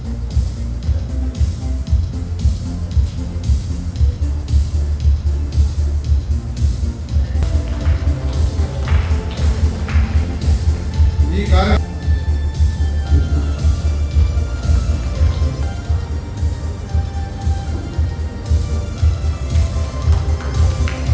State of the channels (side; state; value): both; identical; correlation 1.00